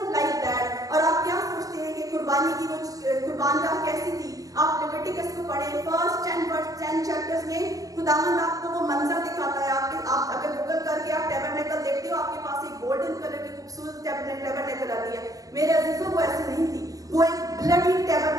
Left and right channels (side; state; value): left; late; 0.17 ms